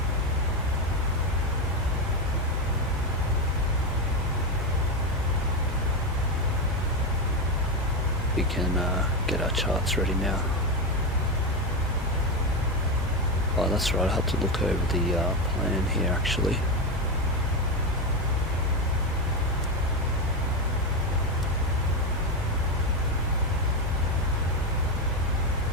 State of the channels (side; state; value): both; normal; correlation 0.11